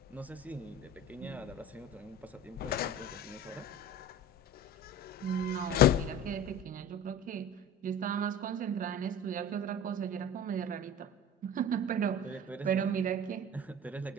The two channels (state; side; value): normal; both; correlation 0.36